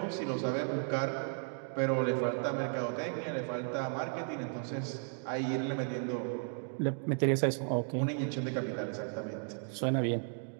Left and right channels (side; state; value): left; silent; 55 dB below the other